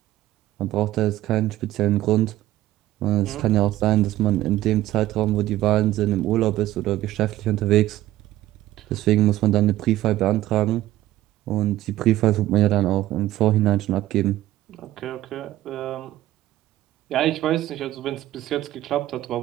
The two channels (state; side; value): quieter; left; 14.9 dB